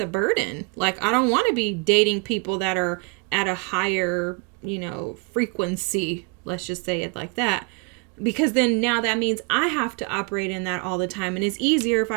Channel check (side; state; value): left; quieter; 30.3 dB